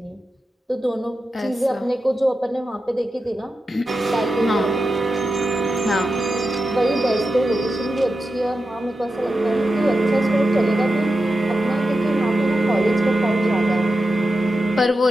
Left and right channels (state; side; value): normal; both; correlation 0.90